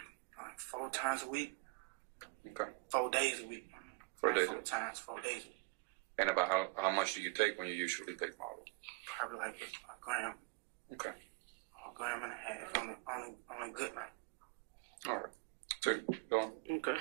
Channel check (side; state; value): left; quieter; 28.1 dB